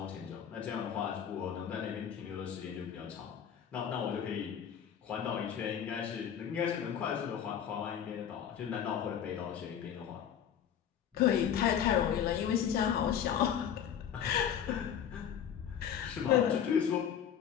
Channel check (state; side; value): quieter; right; 8.9 dB